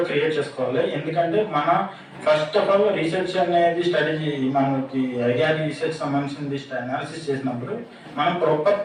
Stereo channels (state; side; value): identical; both; correlation 1.00